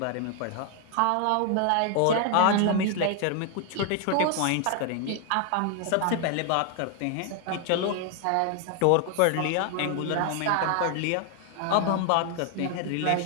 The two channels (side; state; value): both; different; correlation 0.00